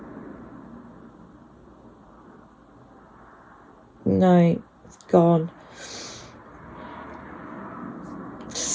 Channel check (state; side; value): identical; both; correlation 1.00